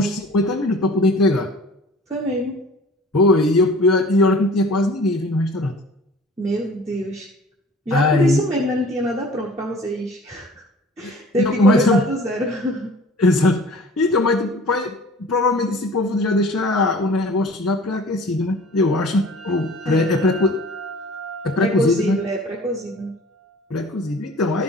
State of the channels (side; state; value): both; normal; correlation 0.46